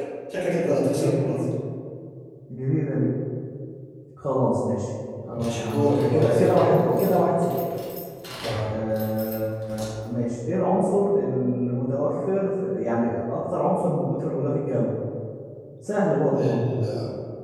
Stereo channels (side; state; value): both; identical; correlation 1.00